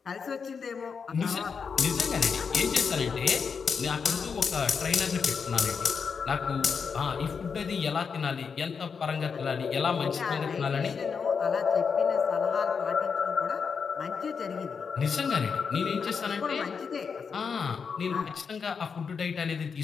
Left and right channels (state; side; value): quieter; right; 5.9 dB